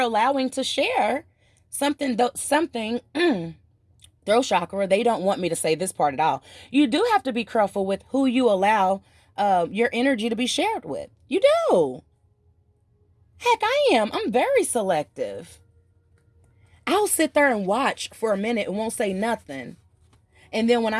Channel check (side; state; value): both; identical; correlation 1.00